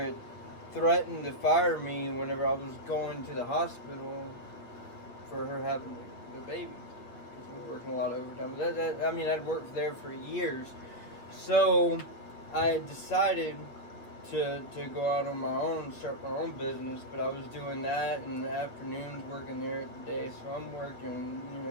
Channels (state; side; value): late; right; 8.5 ms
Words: had threatened to fire me whenever I was going to the hospital for her having the baby, because we were working a lot of overtime. But I'd worked there for years, so I decided to go out on my own, start my own business, but I was doing that in the afternoons, working there at the day, so I'm working,